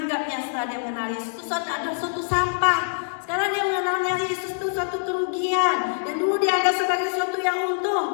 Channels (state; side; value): silent; right; digital silence